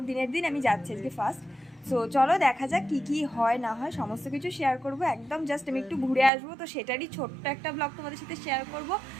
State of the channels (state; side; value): drops out; left; at 6.3 s